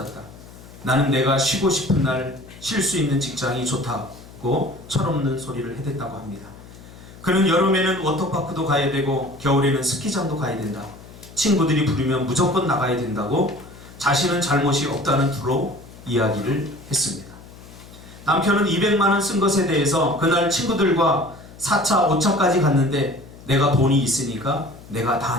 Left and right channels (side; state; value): left; noise; hum, 19 dB below the sound